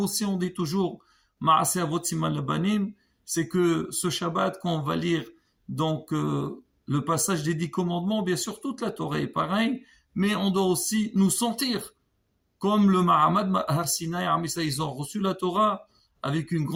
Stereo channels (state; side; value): identical; both; correlation 1.00